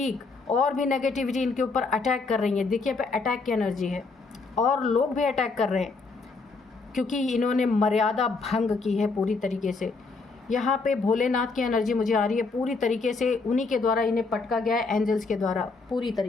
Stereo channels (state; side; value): quieter; right; 4.0 dB